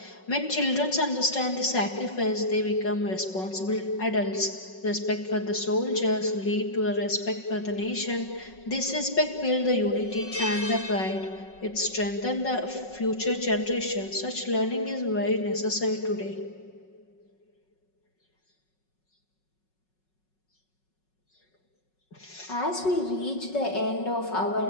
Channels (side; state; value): right; late; 5.4 ms